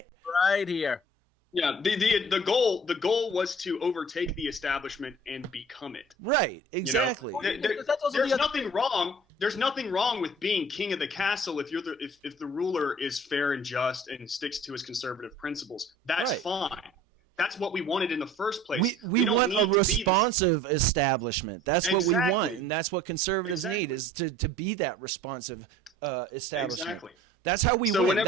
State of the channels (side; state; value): both; normal; correlation 0.48